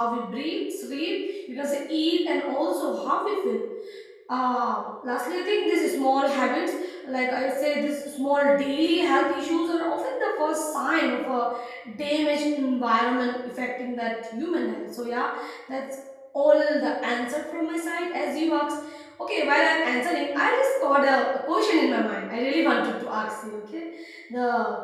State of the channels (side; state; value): both; identical; correlation 1.00